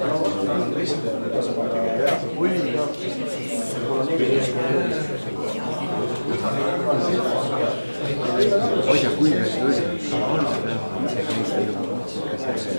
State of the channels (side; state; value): both; inverted; correlation -1.00